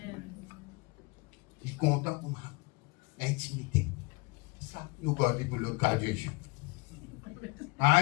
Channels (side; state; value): right; quieter; 27.9 dB